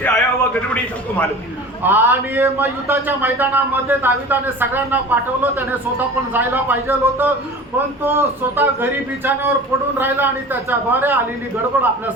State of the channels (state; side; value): normal; both; correlation 0.38